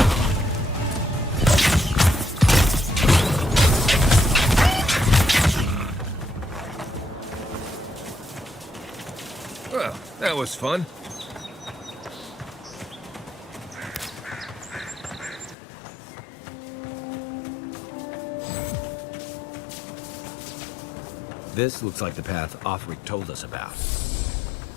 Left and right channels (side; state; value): right; drops out; at 15.6 s